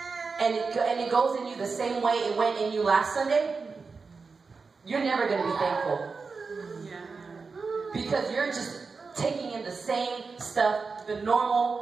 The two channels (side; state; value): left; quieter; 4.6 dB